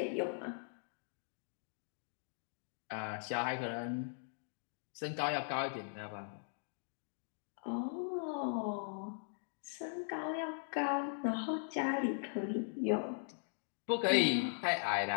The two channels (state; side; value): silent; right; digital silence